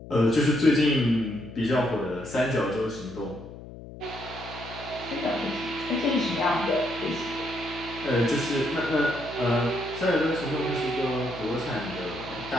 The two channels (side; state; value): left; noise; hum, 14 dB below the sound